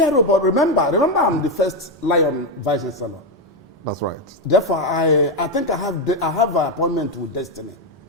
but remember I'm the first Lion Vice-Chancellor. That's right. Therefore, I think I have an appointment with destiny.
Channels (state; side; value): normal; both; correlation 0.06